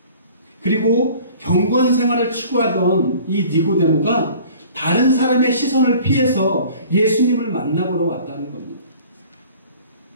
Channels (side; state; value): both; inverted; correlation -0.48